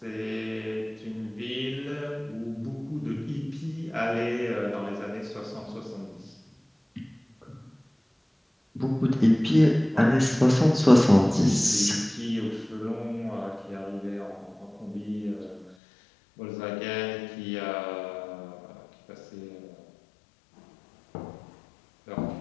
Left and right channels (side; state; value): right; drops out; at 15.8 s